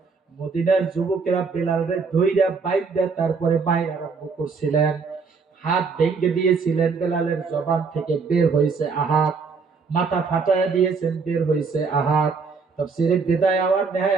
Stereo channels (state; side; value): quieter; left; 5.0 dB